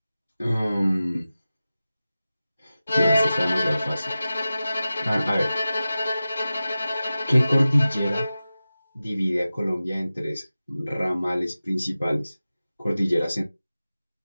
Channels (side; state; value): both; inverted; correlation -0.95